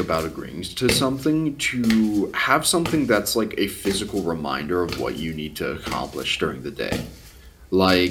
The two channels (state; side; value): identical; both; correlation 1.00